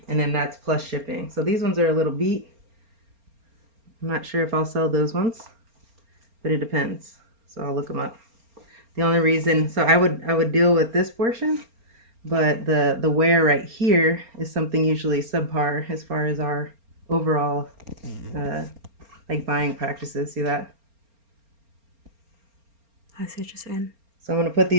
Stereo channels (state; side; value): late; left; 4.3 ms